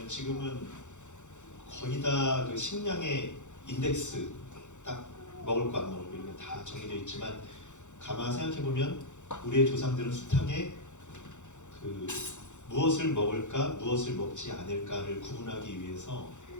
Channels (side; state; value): right; late; 0.85 ms